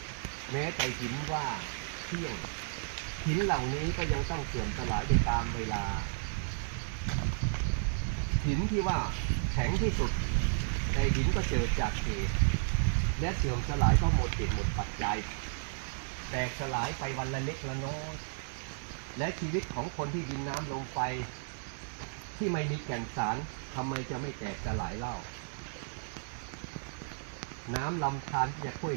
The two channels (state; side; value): silent; left; digital silence